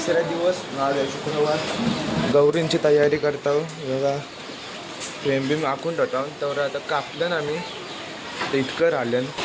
दिवस. आज आहे शुक्रवार. गौरींची तयारी करतो बघा. फ्रेम बिम आखून ठेवतो तर आता कापलं ना मी तर इतकं राहिलं.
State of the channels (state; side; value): identical; both; correlation 1.00